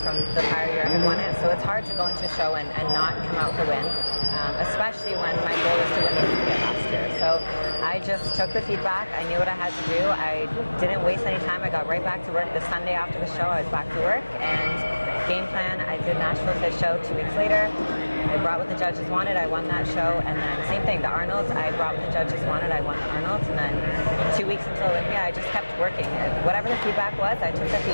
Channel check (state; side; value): inverted; both; correlation -1.00